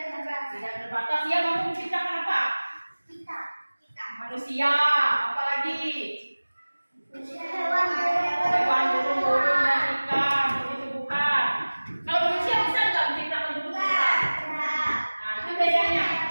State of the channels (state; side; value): inverted; both; correlation -1.00